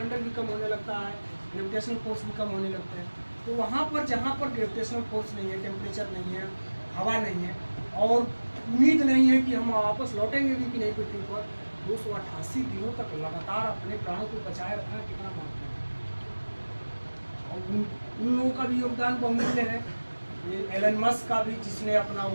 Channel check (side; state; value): both; inverted; correlation -1.00